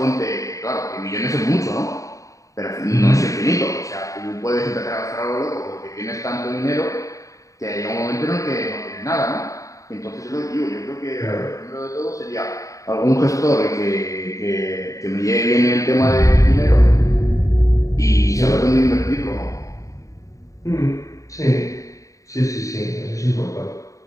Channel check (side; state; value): right; late; 0.16 ms